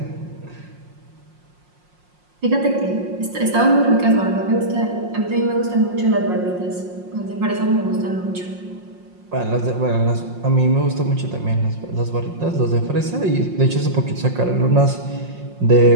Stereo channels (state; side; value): late; left; 5.6 ms